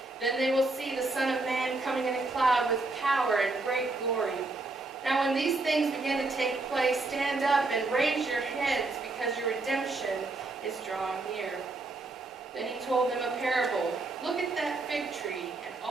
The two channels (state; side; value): quieter; left; 3.3 dB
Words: Then they will see the Son of Man coming in a cloud with power and great glory. Now when these things begin to take place, stand up and raise your heads, because your redemption is drawing near. Then he told them a parable. Look at that fig tree and